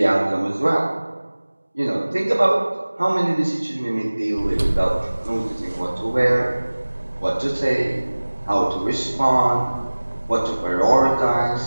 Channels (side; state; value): both; inverted; correlation -1.00